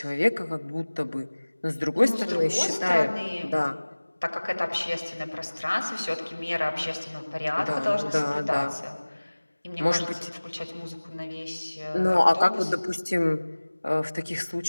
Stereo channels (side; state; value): both; inverted; correlation -1.00